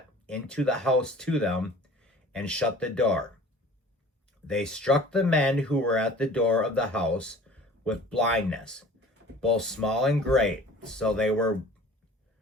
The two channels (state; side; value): normal; both; correlation 0.46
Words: into the house to them and shut the door. They struck the men who were at the door of the house with blindness, both small and great, so they